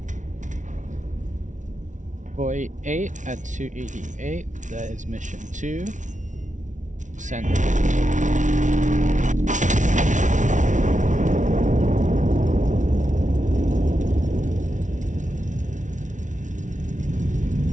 48 at 288. That is mission 2. Send it.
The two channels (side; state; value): left; late; 0.37 ms